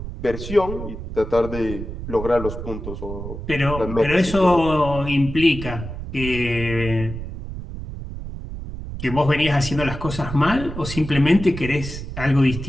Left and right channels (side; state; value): right; noise; rumble, 8 dB below the sound